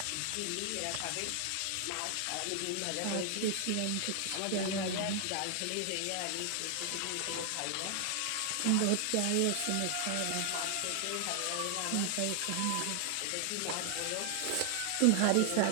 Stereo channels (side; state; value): both; different; correlation 0.00